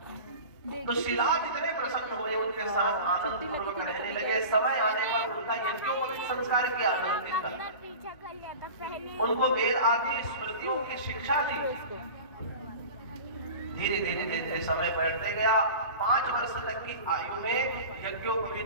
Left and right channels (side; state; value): both; inverted; correlation -0.35